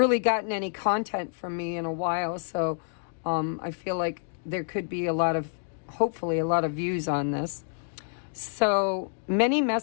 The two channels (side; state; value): right; silent; digital silence